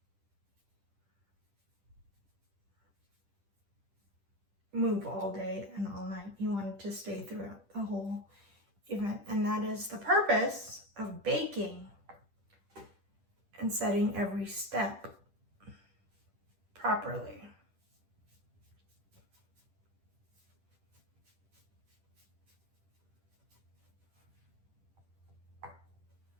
move all day and all night. You want it to stay throughout the whole event. And that is the purpose of baking and setting every step properly.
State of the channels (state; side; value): late; left; 10 ms